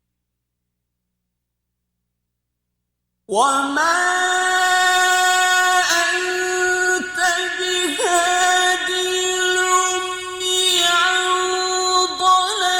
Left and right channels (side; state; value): both; identical; correlation 1.00